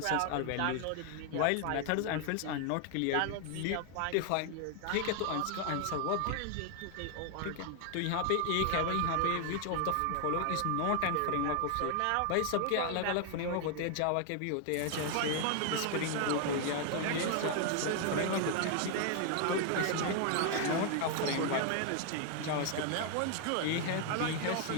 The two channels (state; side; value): different; both; correlation 0.00